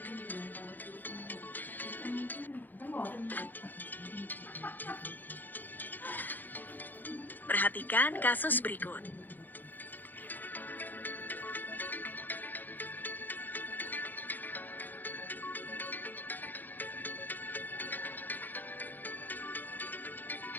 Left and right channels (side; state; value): right; late; 0.087 ms